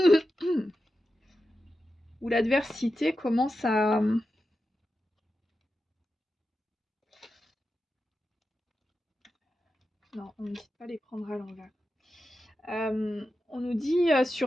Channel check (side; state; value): both; normal; correlation 0.91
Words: où l'adversité commence à... Non, on ne dit pas les prendre à l'envers. On nous dit